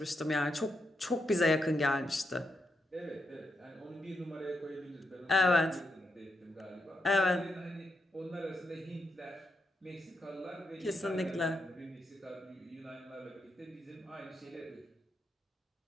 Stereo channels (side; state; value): both; normal; correlation 0.83